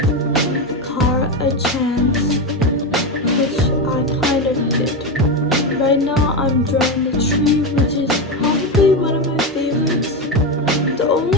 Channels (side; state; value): both; normal; correlation 0.14